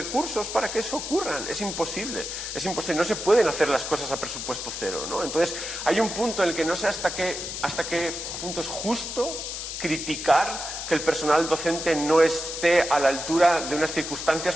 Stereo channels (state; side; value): noise; left; hiss, 6 dB below the sound